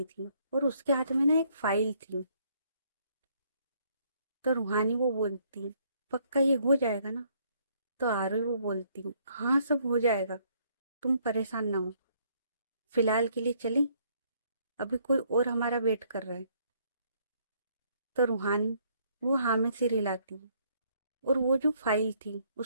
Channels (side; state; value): both; inverted; correlation -0.67